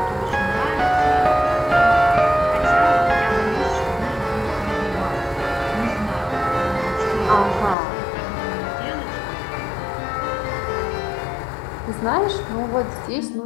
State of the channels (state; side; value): drops out; right; at 7.8 s